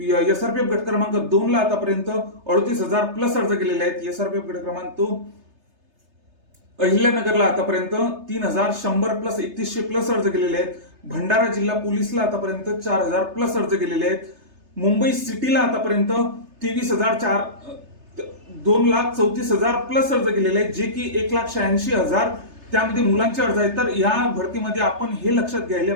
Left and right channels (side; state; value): left; late; 3.3 ms